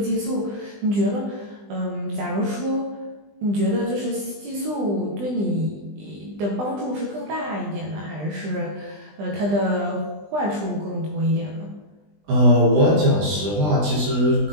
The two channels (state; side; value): late; left; 20 ms